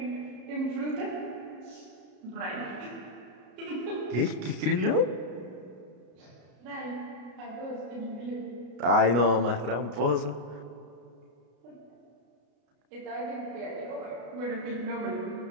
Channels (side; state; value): left; late; 33 ms